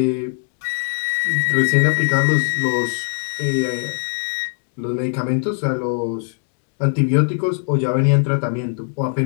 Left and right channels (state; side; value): silent; right; digital silence